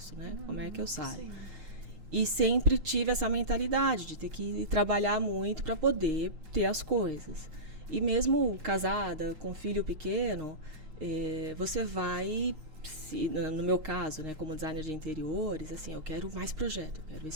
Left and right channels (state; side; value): late; left; 6.5 ms